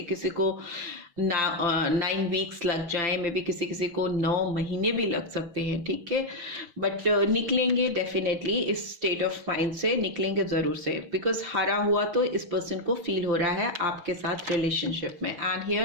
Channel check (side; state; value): left; late; 5.8 ms